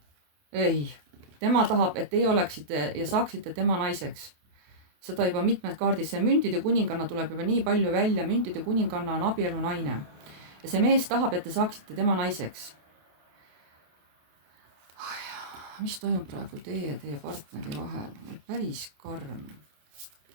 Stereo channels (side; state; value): left; late; 28 ms